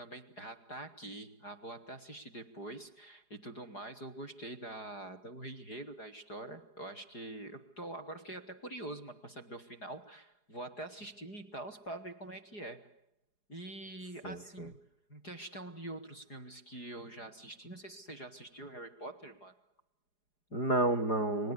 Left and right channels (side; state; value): right; late; 4.8 ms